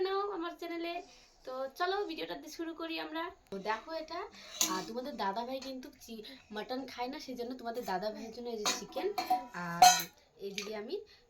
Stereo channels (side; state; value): both; identical; correlation 1.00